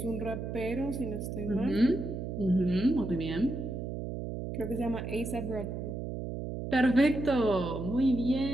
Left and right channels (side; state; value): right; noise; hum, 5 dB below the sound